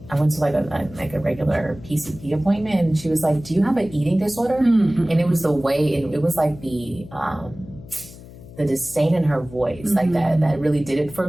to like a regular PCP appointment and she was like, do you have an eating disorder? And it was the way, it was like the disdain in her voice, like that really did it for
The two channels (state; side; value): noise; left; hum, 18 dB below the sound